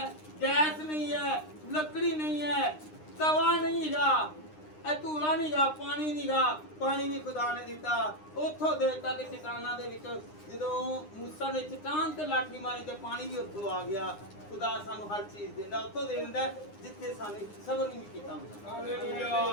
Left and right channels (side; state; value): right; late; 9.8 ms